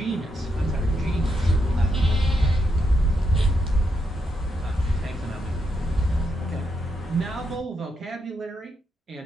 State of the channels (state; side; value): normal; both; correlation 0.81